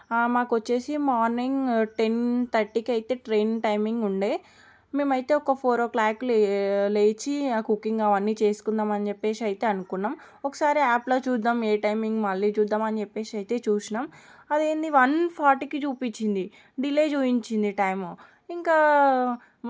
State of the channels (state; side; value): identical; both; correlation 1.00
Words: మాకు వచ్చేసి మార్నింగ్ 10:30కి అయితే ట్రైన్ టైమింగ్ ఉండే. మేమైతే ఒక 4 o'clock లేచి ఆ కుకింగ్ అవన్నీ చేసుకుందాం అని చెప్పేసి అయితే అనుకున్నాం. ఒకసారి యాప్లో చూద్దాం ఏ టైమింగ్ మళ్ళీ చూద్దాం అని చెప్పేసి అయితే చూసినాం. అదేంది 1:40కి చూపించింది, డిలే చూపించింది టైము. ఇంకా